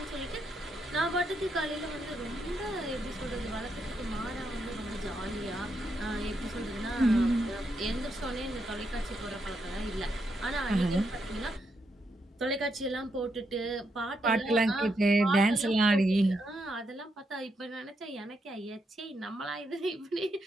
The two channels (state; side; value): normal; both; correlation 0.80